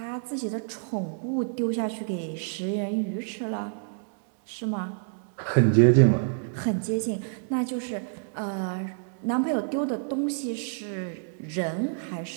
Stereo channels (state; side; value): silent; left; digital silence